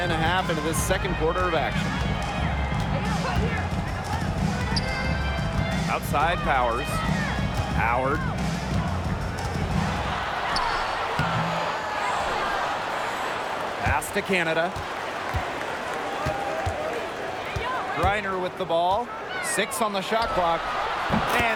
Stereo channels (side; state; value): both; identical; correlation 1.00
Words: and a half into this second quarter of action. Outside Powers. Howard. Pass to Canada. Griner with the ball. 6 on the shot clock.